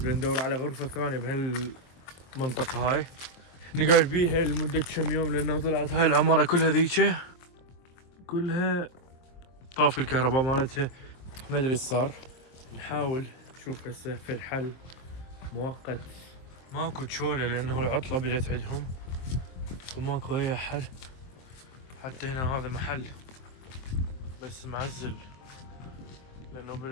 ندور على غرفة ثانية بهالمنطقة هاي نقعد بيها لمدة كم يوم، لأنه طلعت هاي العمارة كلها ذيك كلها طاف الكهرباء مالتها. ما ادري ايش صار، نحاول نشوف هسه في الحل مؤقت. ماكو تشولة لأنه العطلة بدت عندهم وماكو أي حل. حتى هنا هذا محل بس معزل لأنه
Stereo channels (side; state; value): right; late; 23 ms